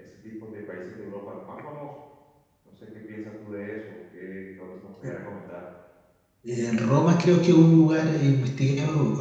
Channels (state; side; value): identical; both; correlation 1.00